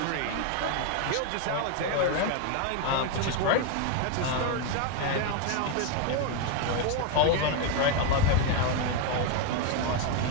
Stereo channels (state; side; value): different; both; correlation 0.01